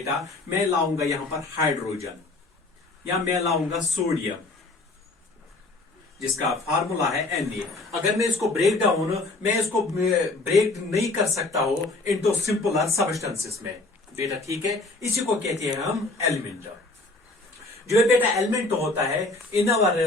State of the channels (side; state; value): right; quieter; 3.1 dB